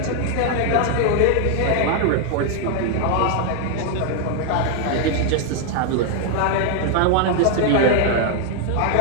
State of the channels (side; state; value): both; different; correlation 0.00